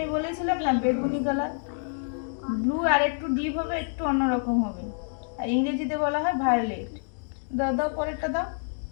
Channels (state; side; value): silent; right; digital silence